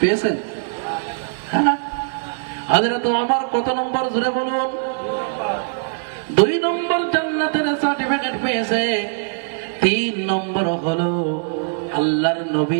হ্যাঁ। হযরত ওমর কত নম্বর? জোরে বলুন। 2 নম্বর জান্নাতের সার্টিফিকেট পেয়েছে। 3 নম্বর হলো আল্লাহর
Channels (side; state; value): left; silent; 59 dB below the other